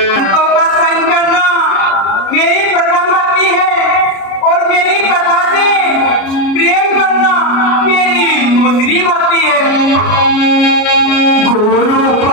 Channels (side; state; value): right; late; 33 ms